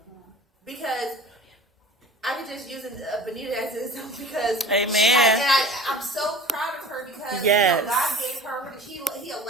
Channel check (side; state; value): both; normal; correlation 0.40